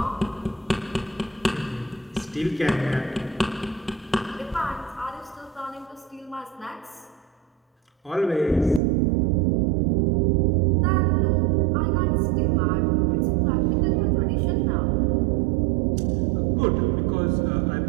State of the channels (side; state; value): left; drops out; at 8.8 s